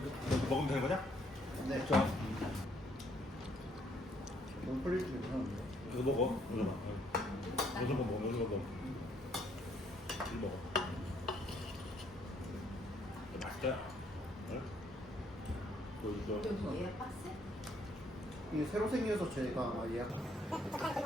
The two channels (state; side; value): normal; both; correlation 0.68